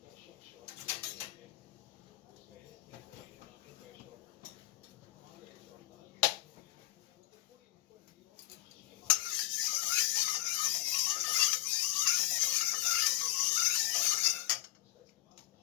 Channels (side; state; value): right; quieter; 17.6 dB